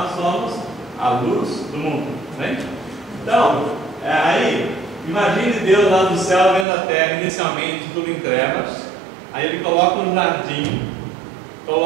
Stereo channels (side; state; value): left; drops out; at 6.7 s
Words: somos a luz do mundo, né? Então, aí, imagine Deus lá do céu vendo a terra, inicialmente tudo em trevas. Aí Ele coloca um jardim,